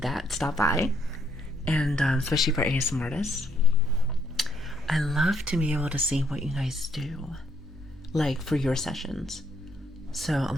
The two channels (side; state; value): both; normal; correlation 0.70